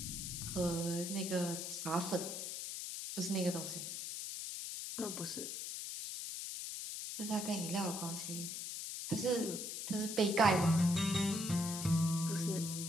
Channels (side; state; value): left; noise; hiss, 5 dB below the sound